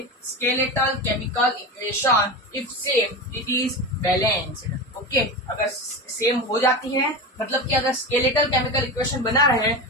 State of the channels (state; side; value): normal; both; correlation 0.23